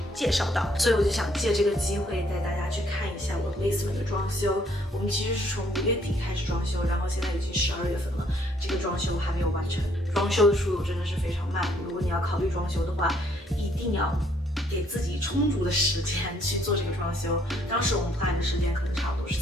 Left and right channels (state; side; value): normal; both; correlation 0.66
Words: 介绍到，所以我就想借这个机会带大家去看一下我 basement 的装修。我们其实是从5月底开始装修，然后现在已经12月份了，这个装修还没有完成。装修的速度真的是非常慢，如果你要考虑装修的话，一定要给自己充足的时间去做这个装修。当时我们 plan 的时间可能差不多是